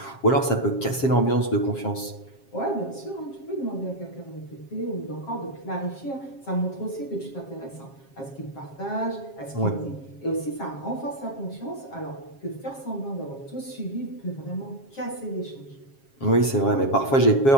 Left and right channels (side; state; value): right; late; 7.4 ms